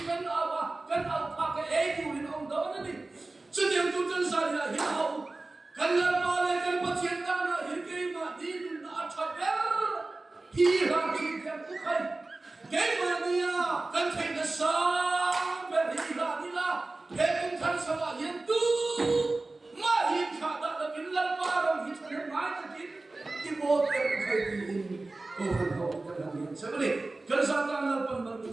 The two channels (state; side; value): quieter; left; 3.2 dB